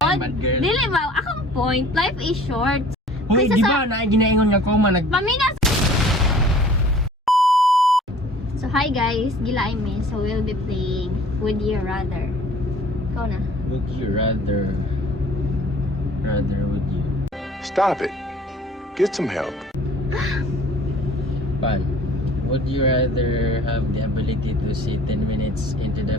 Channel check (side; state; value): both; normal; correlation 0.50